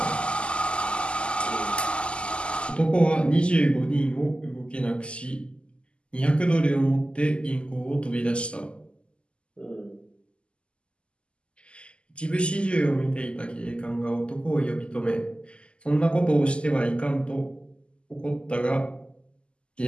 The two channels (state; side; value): late; right; 0.052 ms